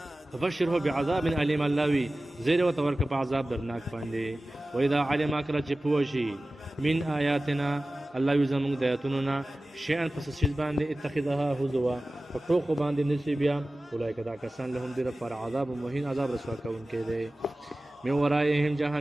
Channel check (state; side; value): normal; both; correlation 0.96